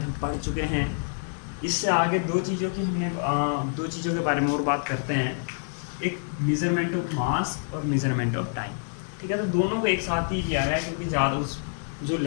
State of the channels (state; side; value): silent; right; 58 dB below the other